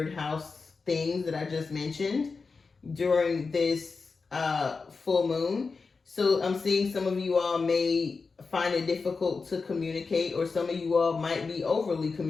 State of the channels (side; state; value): right; quieter; 4.5 dB